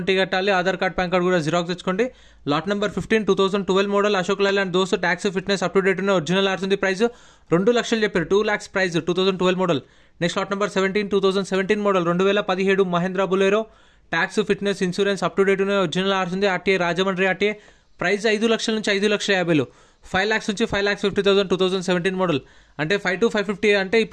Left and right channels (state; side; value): identical; both; correlation 1.00